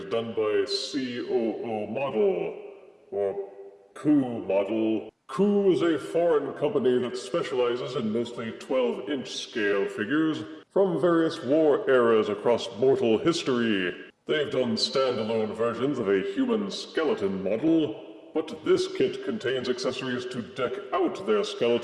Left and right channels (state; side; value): identical; both; correlation 1.00